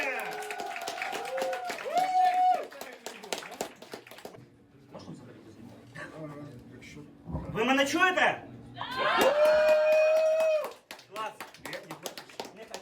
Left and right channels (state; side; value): identical; both; correlation 1.00